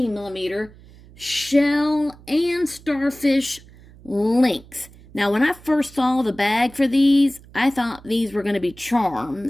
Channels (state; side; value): noise; right; hum, 23 dB below the sound